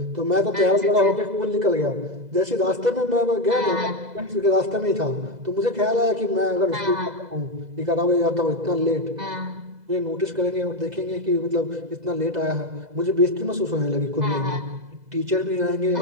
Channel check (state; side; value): late; left; 2.0 ms